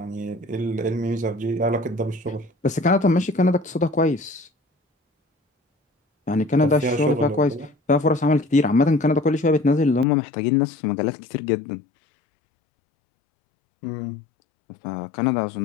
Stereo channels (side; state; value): right; drops out; at 10.1 s